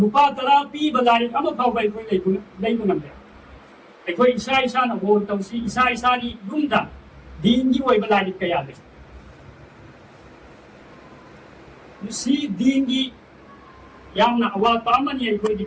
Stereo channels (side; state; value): both; identical; correlation 1.00